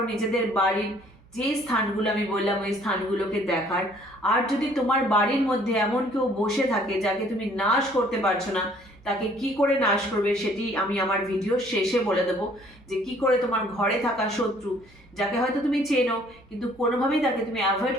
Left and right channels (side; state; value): right; noise; hum, 27 dB below the sound